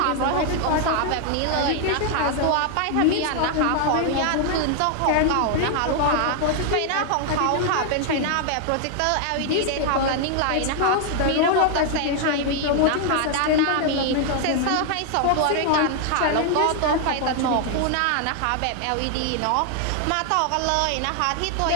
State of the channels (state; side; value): different; both; correlation 0.00